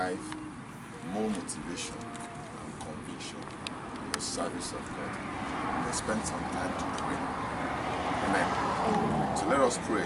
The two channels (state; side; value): identical; both; correlation 1.00